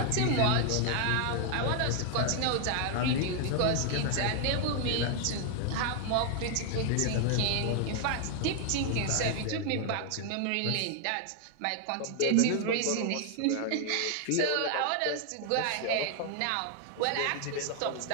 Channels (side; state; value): both; different; correlation 0.00